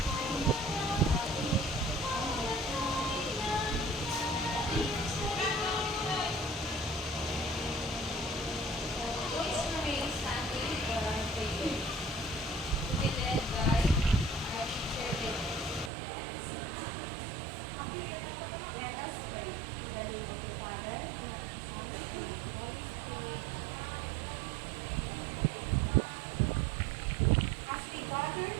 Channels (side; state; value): left; drops out; at 15.9 s